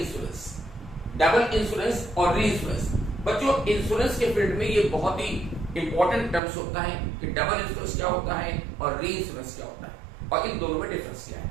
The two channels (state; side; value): drops out; left; at 6.4 s